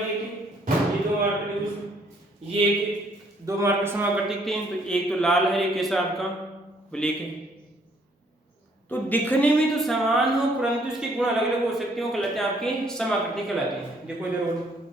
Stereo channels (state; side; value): normal; both; correlation 0.65